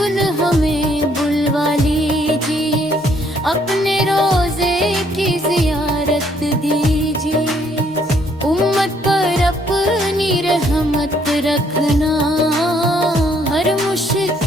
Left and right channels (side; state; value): both; normal; correlation 0.67